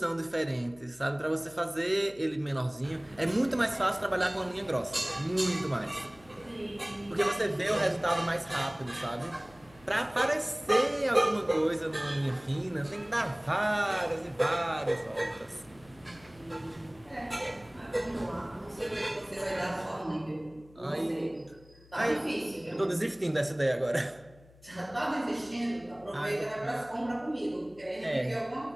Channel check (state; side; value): noise; left; hum, 25 dB below the sound